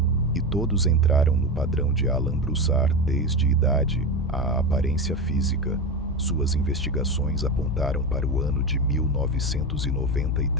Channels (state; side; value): normal; both; correlation 0.20